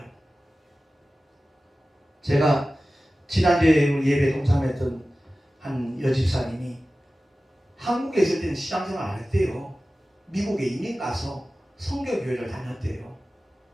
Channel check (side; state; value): both; normal; correlation 0.96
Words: 제가 지난주에 예배 동참했던 한 여집사님이 한국에 있을 때는 시장생활 안 했대요. 미국에 이민 가서 선교교회를 다녔대요.